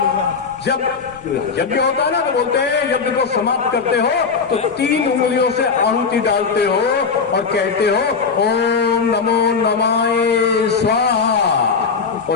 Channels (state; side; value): quieter; right; 5.3 dB